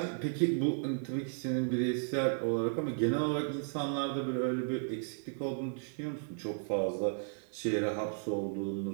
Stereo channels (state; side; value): silent; left; digital silence